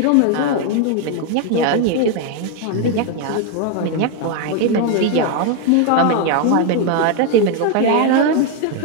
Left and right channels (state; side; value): different; both; correlation 0.01